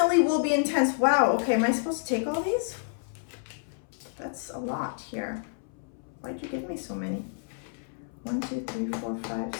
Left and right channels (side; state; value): right; silent; 58 dB below the other